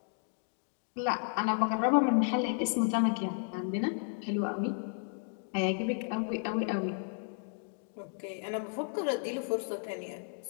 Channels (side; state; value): right; silent; 56 dB below the other